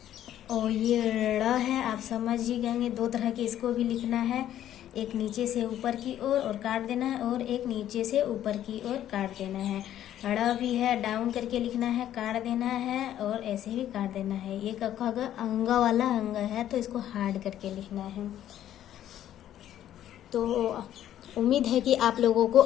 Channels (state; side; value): quieter; right; 11.7 dB